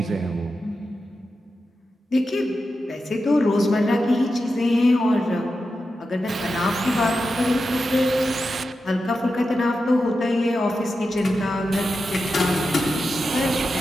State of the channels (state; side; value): normal; both; correlation 0.90